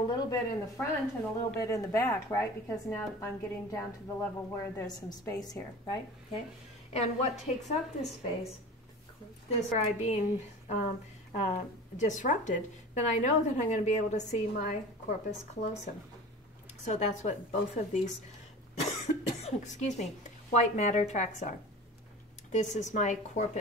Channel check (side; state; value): both; normal; correlation 0.37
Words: bit in the front and a little bit in the back, right? Because now I'm getting down to the level where there's some space here, right? Okay. And what takes up this space, this where I'm being disrupted, then I know that I'm going to be able to see my corpus callosum. So that's what both of these, excuse me, white matter tracts are. This is my